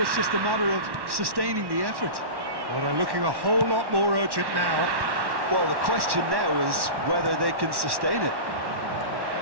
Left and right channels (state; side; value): late; left; 1.1 ms